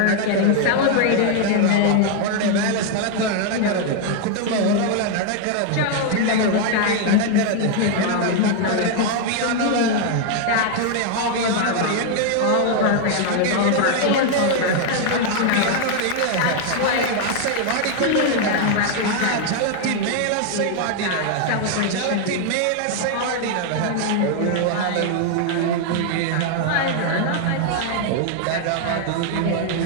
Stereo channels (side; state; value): both; different; correlation 0.00